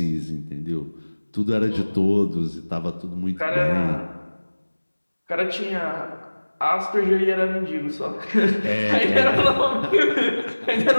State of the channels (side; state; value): both; inverted; correlation -1.00